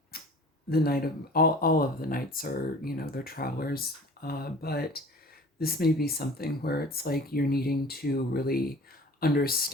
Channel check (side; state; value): both; normal; correlation 0.44